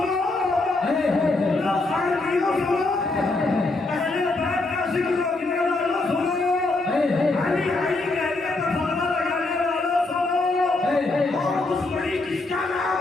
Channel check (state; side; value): quieter; right; 3.2 dB